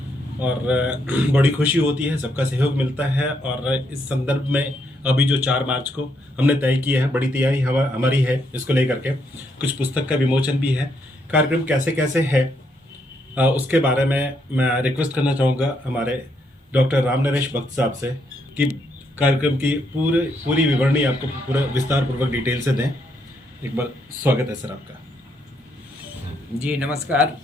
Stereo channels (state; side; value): normal; both; correlation 0.75